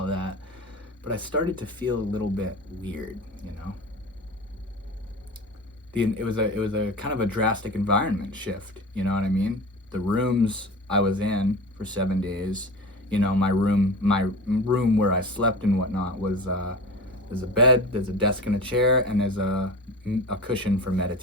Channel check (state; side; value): normal; both; correlation 0.32